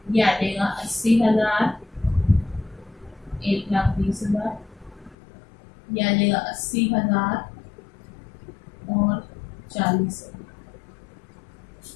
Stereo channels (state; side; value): drops out; right; at 5.2 s